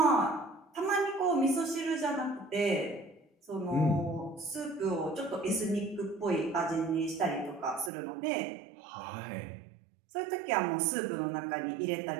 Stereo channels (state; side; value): drops out; left; at 7.9 s